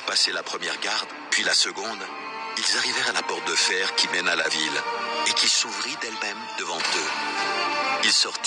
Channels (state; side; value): identical; both; correlation 1.00